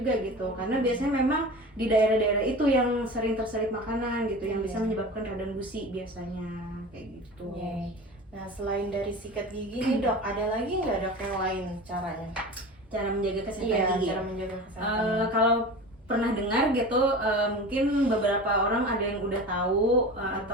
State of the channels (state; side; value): normal; both; correlation 0.33